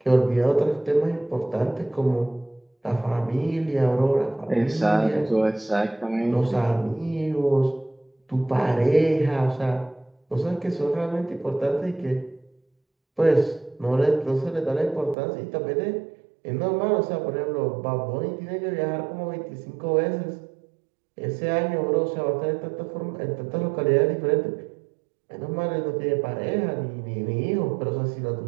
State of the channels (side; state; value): left; drops out; at 15.2 s